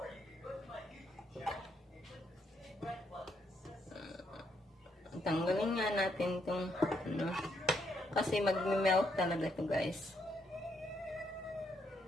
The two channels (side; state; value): both; normal; correlation 0.76